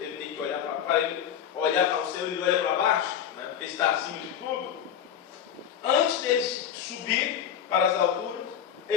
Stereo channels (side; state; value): right; quieter; 9.2 dB